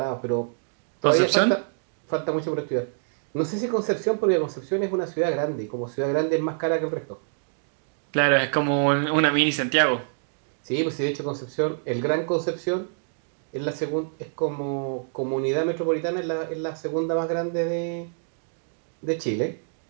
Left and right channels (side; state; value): left; silent; digital silence